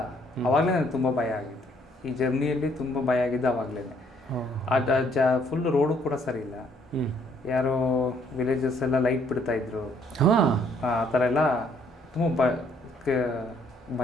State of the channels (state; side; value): normal; both; correlation 0.65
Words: ಅವಾಗಲೇ ನನಗೆ ತುಂಬ ಭಯ ಆಗಿತ್ತು. ಈ ಜರ್ನಿಯಲ್ಲಿ ತುಂಬ ಭಯ ಆಗಿದ್ದು ಅವಾಗಲೇ. ಫುಲ್ ರೋಡು ಕೂಡ ಸರಿ ಇಲ್ಲ. ಯಾರೋ ವಿಲೇಜಸ್ ಎಲ್ಲ ಲೈಟ್ ಬಿಡ್ತಾ ಇದ್ರು. ಆ ಥರ ಎಲ್ಲ ತುಂಬ